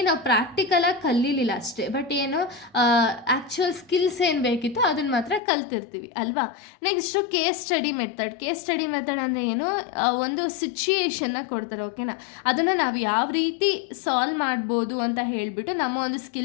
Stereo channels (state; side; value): drops out; right; at 5.4 s